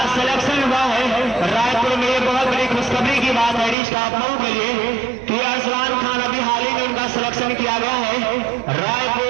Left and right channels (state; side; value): drops out; left; at 3.8 s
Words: सिलेक्शन हुआ है, रायपुर में ये बहुत बड़ी खुशखबरी की बात है स्टाफ लोगों के लिए कि अरसलान खान अभी हाल ही में उनका सिलेक्शन किया गया है